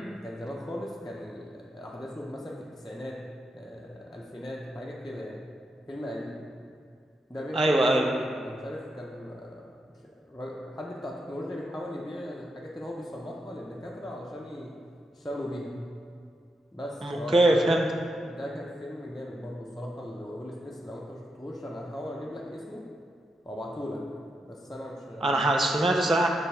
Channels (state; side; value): normal; both; correlation 0.84